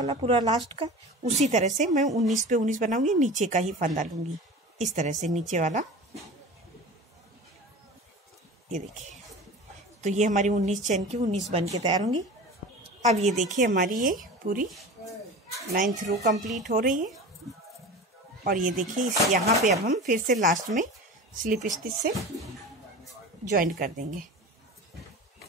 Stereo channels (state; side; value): normal; both; correlation 0.34